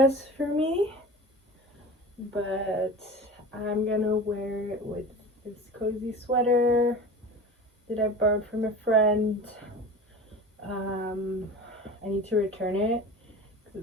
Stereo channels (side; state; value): both; normal; correlation 0.35